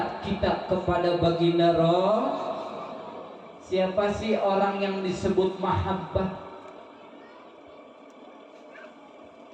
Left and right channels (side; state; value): both; identical; correlation 1.00